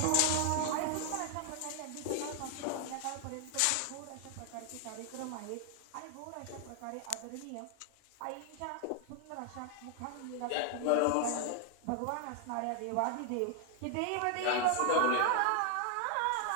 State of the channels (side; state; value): both; different; correlation 0.00